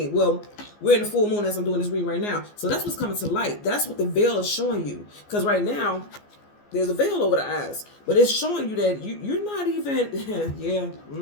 Well, we're in the full moon as I'm doing this reading right now. So that's what's coming to light. That's what the veil is showing you. Because right now, there's a veil over the eyes. But it's showing you that you're not even, yeah,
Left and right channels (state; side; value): late; right; 14 ms